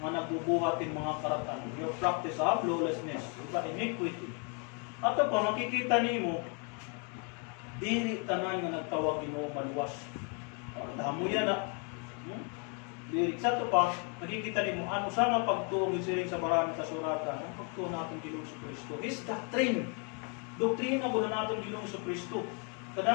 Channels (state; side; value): quieter; right; 37.3 dB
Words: nga nagbubuhatin mga karatan. Your practice of lawlessness, iniquity. At pa, makikita nimo, dili tanan nga nagtawag Ginoo maluwas. Damo yan na. Lyric sa ito pa, nakikita niyo ano sa nga pagtuong siring sa maraming kasuratan, ang pagtuong natin Ginoong Kristo is doctrine. Doktrina ko na natin Ginoong Kristo.